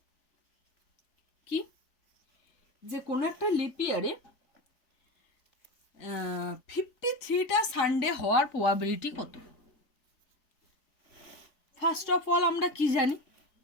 কি যে কোনো একটা লিপ ইয়ারে 53টা সানডে হওয়ার প্রবাবিলিটি কত? ফার্স্ট অফ অল আমরা কি জানি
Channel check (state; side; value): late; right; 4.8 ms